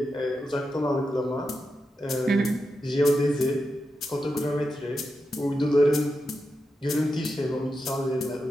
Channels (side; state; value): both; normal; correlation 0.88